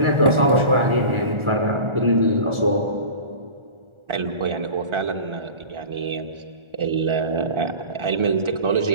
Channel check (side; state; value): left; late; 1.4 ms